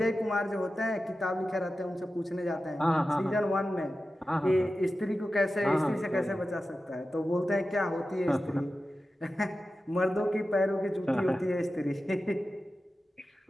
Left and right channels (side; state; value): both; normal; correlation 0.93